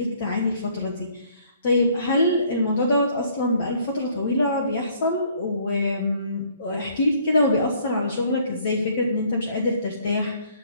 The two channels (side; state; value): both; inverted; correlation -0.61